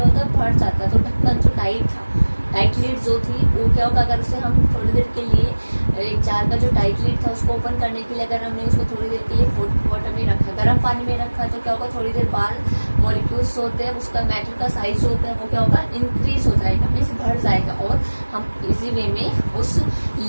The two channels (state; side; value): inverted; both; correlation -1.00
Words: होता है, बढ़ जाता है. तो ढक्कन जो टाइट था, टाइट लीड जो थी वो क्या होगा, अगर उसे हम थोड़ी देर के लिए एक जार का जो टाइट लीड था उसको ओपन करने के लिए अगर हमने उसको थोड़ी देर के लिए हॉट वाटर में रखा, गर्म पानी में रखा तो क्या होगा, थोड़ी देर बाद मॉलिक्यूल्स होते हैं, उसका मैटर का साइज जो होता है वो क्या होगा, इंक्रीज हो जाएगा, मीन्स बढ़ जाएगा, और हम इजी वे में उस